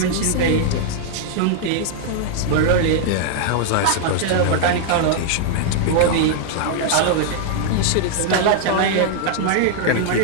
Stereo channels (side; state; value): both; different; correlation -0.01